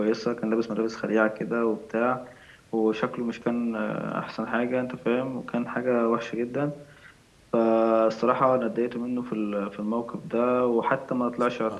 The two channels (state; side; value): identical; both; correlation 1.00